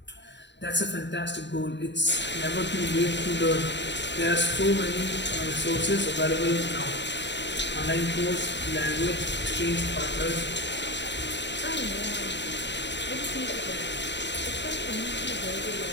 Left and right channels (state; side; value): late; right; 0.52 ms